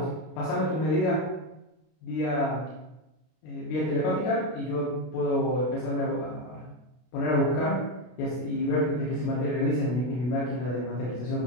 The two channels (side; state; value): right; late; 32 ms